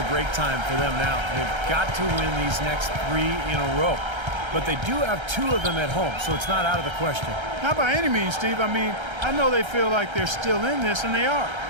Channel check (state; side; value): late; left; 1.3 ms